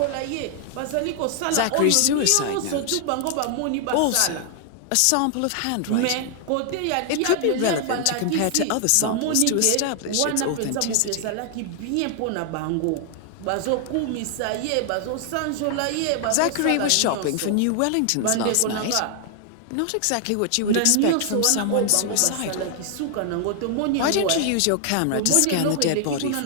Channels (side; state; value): both; different; correlation 0.00